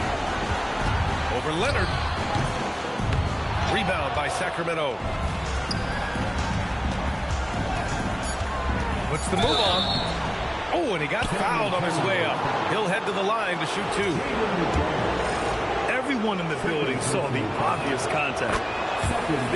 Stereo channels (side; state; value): both; identical; correlation 1.00